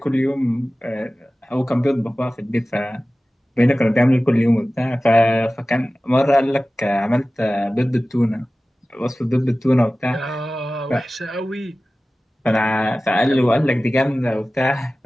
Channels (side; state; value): both; normal; correlation 0.96